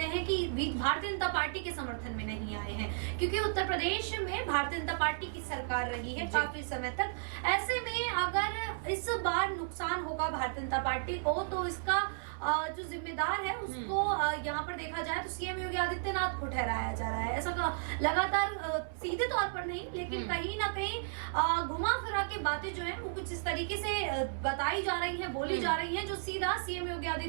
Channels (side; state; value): left; silent; 55 dB below the other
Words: हैं कि भारतीय जनता पार्टी के समर्थन में नहीं आए हैं, क्योंकि उत्तर प्रदेश में भारतीय जनता पार्टी की सरकार रही है काफी समय तक। ऐसे में अगर इस बार नुकसान होगा भारतीय जनता पार्टी को, तो इसका जो जिम्मेदार है उसको यहाँ पर देखा जाए तो सीएम योगी आदित्यनाथ को ठहराया जा रहा है। ऐसा लगातार सीधे तौर पर नहीं, लेकिन कहीं ना कहीं घुमा फिरा के बातें जो है वो कुछ इस तरीके से बताई जा रही है, बोली जा रही है, जो सीधा सीएम योगी